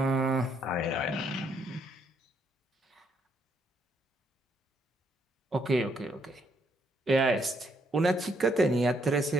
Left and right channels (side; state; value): both; normal; correlation 0.72